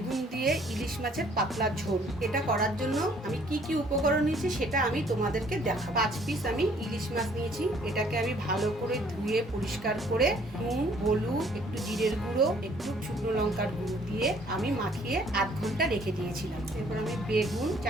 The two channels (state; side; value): normal; both; correlation 0.60